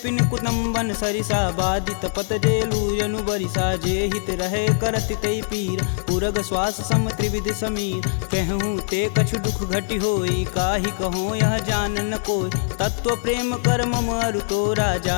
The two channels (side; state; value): right; silent; digital silence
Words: कुटुम्बन सरिसा बाधित पत जेलु जनु बरिसा जे हित रहे करत तई पीर पुरग श्वास सम त्रिविध समीर कहूँ ते कछु दुख घटि होई काहि कहो यह जान न कोय तत्व प्रेम कर मम अरु तोरा